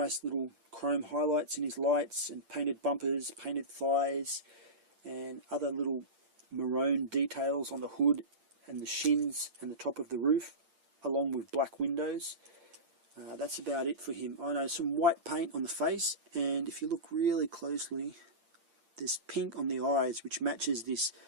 little chrome highlights in his lights and painted bumpers, painted thighs, and other little maroon details on the hood and the shins and the top of the roof, along with black windows. That's about it for him. I know some white paint on the face, and if you look really closely, there's pink on the eyes, which matches this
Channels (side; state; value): left; late; 8.7 ms